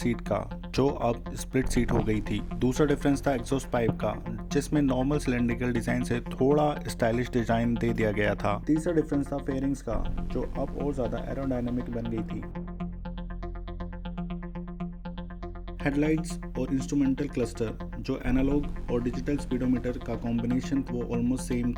का, जो अब स्प्लिट सीट हो गई थी। दूसरा डिफरेंस था एग्जॉस्ट पाइप का, जिसमें नॉर्मल सिलेंड्रिकल डिजाइन से थोड़ा स्टाइलिश डिजाइन दे दिया गया था। तीसरा डिफरेंस था फेयरिंग्स का, जो अब और ज्यादा एरोडायनामिक बन गई थी। हेडलाइट्स और इंस्ट्रूमेंटल क्लस्टर, जो एनालॉग और डिजिटल स्पीडोमीटर का कॉम्बिनेशन वो ऑलमोस्ट सेम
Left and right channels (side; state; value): both; identical; correlation 1.00